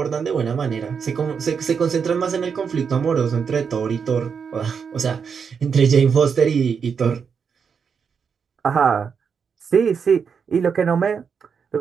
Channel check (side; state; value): left; quieter; 6.4 dB